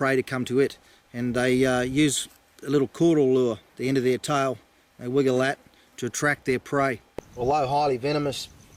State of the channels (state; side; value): identical; both; correlation 1.00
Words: to come to it. And they use a little caudal lure at the end of their tail. They wiggle that to attract their prey. Although highly venomous,